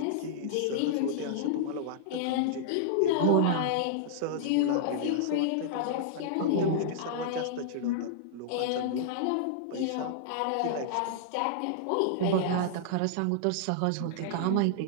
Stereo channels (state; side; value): different; both; correlation -0.01